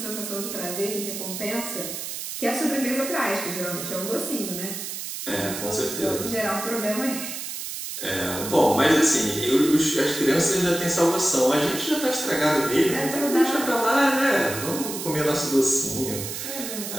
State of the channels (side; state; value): right; noise; hiss, 7 dB below the sound